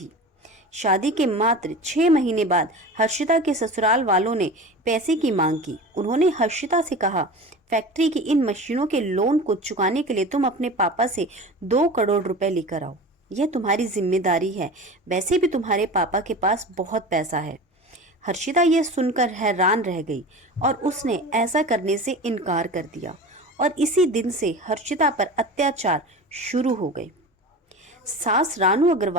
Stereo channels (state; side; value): normal; both; correlation 0.33